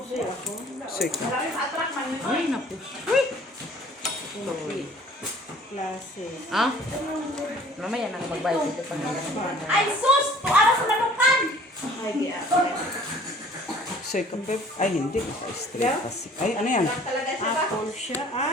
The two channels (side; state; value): both; normal; correlation 0.52